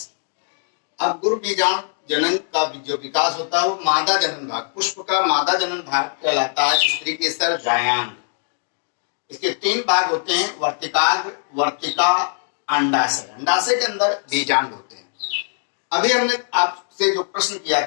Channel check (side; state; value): right; silent; digital silence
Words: अब गुरु बीजाणु जनन का जो विकास होता है वो मादा जनन भाग, पुष्प का मादा जनन भाग कहलाता है। स्त्री केसर जायांग। इसके 3 भाग होते हैं, वर्तिकाग्र, वर्तिका, अंडाशय। अंडाशय के अंदर बीजांड होते हैं। अभी हमने आपसे जो प्रश्न किया